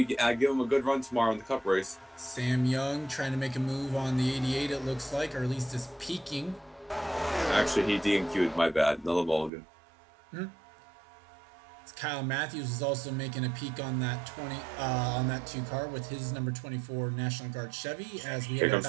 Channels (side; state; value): left; drops out; at 9.5 s